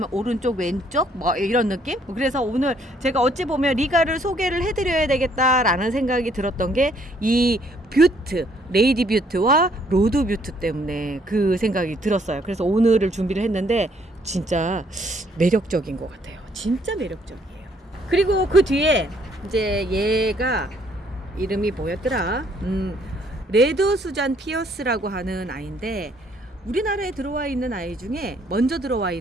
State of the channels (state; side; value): normal; both; correlation 0.66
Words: 오른쪽 왼쪽 뭐 이런 느낌. 그래서 오늘 제가 어찌 보면 리가를 소개를 해드려야 되겠다라는 생각이 들었던 게 이 뷰트 레이디 뷰트와 로드 뷰트 때문에 그 생각이 들었어요. 그래서 오늘을 준비를 했는데 진짜 매력적인 것 같아요. 진짜 매력적이에요. 그리고 그 뒤에 이제 얘가 이름이 뭐였더라? 레드 수잔 피어스라고 하는 아이인데 우리나라에 들어와 있는 아이 중에 먼저 들어와